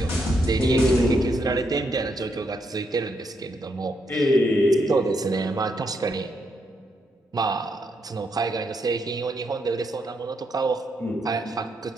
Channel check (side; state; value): both; normal; correlation 0.78